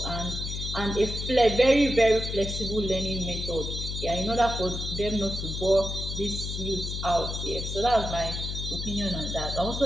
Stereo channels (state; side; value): noise; left; hum, 4 dB below the sound